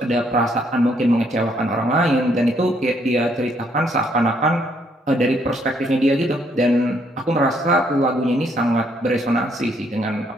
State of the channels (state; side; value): normal; both; correlation 0.70